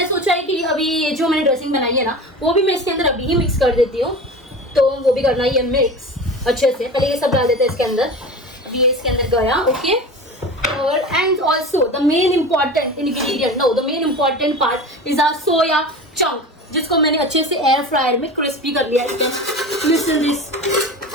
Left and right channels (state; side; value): normal; both; correlation 0.32